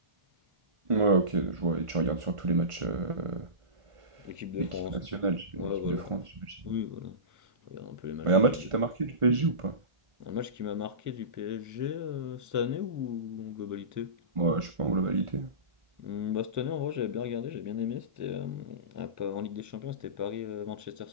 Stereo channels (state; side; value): late; left; 1.5 ms